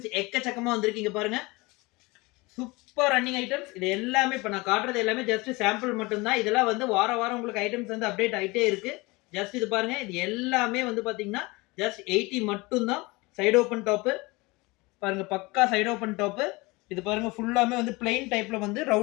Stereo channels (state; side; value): quieter; right; 23.9 dB